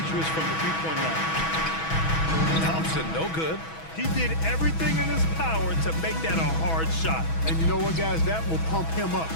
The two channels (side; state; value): right; late; 6.1 ms